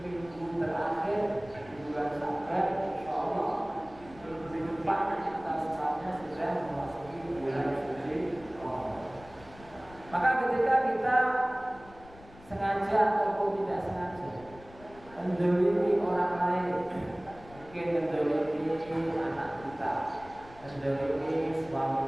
terakhir di bulan Syawal. Insyaallah minggu depan kita semuanya sudah memasuki bulan suci Ramadan. Maka ketika kita sengaja ataupun tidak sengaja menzalimi orang lain, mungkin menzalimi anak kita, menzalimi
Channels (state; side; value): noise; left; rumble, 21 dB below the sound